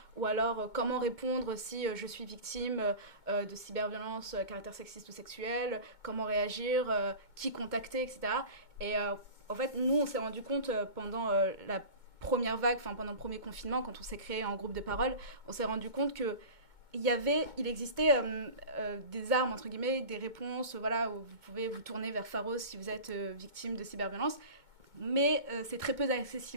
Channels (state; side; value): late; left; 2.2 ms